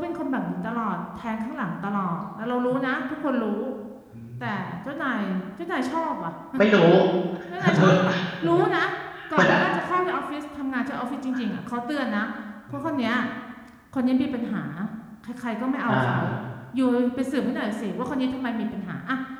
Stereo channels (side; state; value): both; identical; correlation 1.00